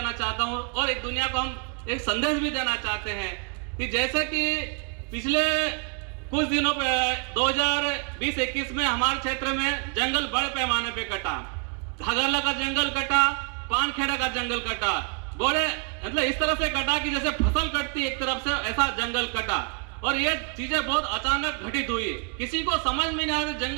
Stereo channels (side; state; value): left; quieter; 38.4 dB